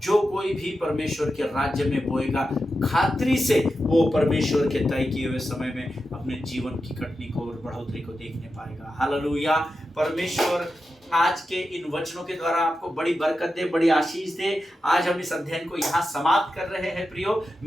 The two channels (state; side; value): normal; both; correlation 0.90